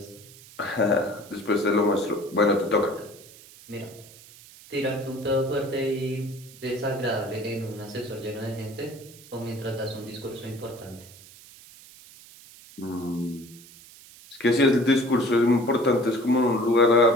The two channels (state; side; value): noise; right; hiss, 21 dB below the sound